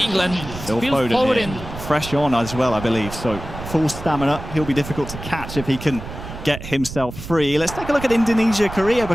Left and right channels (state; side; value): noise; right; rumble, 11 dB below the sound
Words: Phil Foden fresh on as well, I believe. So full stamina. He'll be difficult to catch if he can get himself free. Let's take a look at Indonesia, Korea,